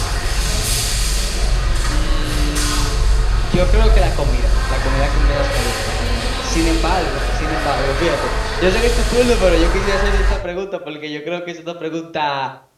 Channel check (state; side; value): identical; both; correlation 1.00